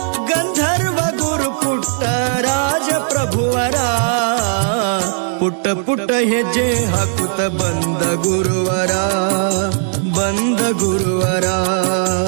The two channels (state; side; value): silent; left; 68 dB below the other